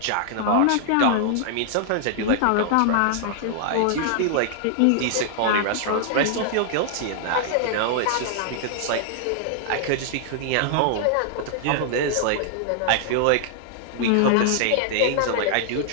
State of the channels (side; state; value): both; different; correlation -0.01